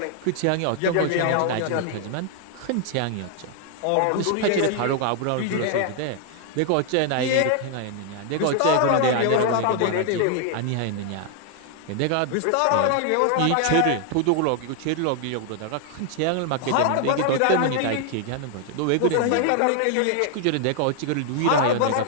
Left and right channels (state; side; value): different; both; correlation 0.00